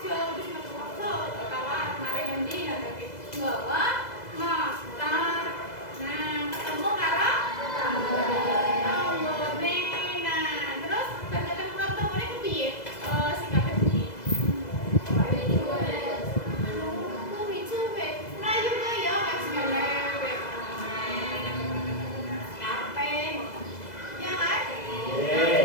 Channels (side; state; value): right; late; 2.0 ms